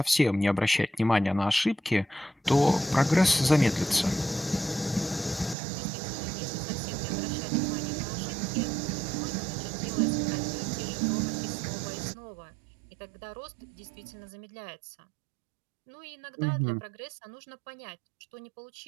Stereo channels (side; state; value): left; drops out; at 5.6 s